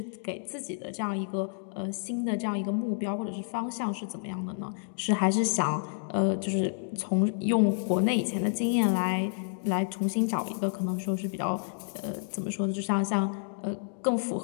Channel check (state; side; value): silent; right; digital silence